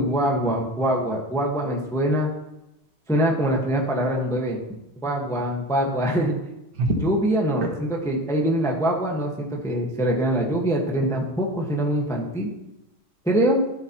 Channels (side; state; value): both; normal; correlation 0.35